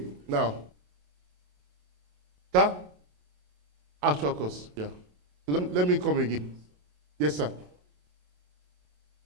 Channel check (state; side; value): late; left; 27 ms